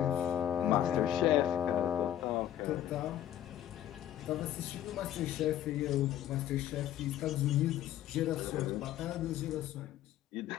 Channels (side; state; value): right; quieter; 11.7 dB